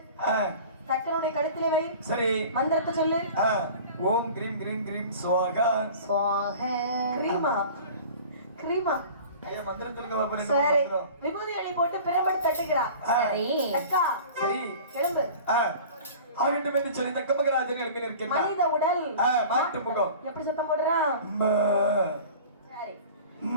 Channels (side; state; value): both; inverted; correlation -0.41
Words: தக்கனுடைய கழுத்திலே வை. சரி, மந்திரத்தை சொல்லு. ஓம் கிரீம் கிரீம் கிரீம் ஸ்வாகா. ஸ்வாகா கிரீமா கிரீமா. ஐயா மந்திரம் சொல்லுங்க பாப்பா. சரி, விபூதி எலி போட்டு பிரம்பு தட்டுகிறா. சரி அக்கா, சரி கிளம்பு. ஆகட்டும் என்று சொல்லி தக்க மகராஜன் எழுப்பி நிற்கிறார். மனித உடல் மாட்டு முகம் எப்படி சத்தம் போடுறான்? சரி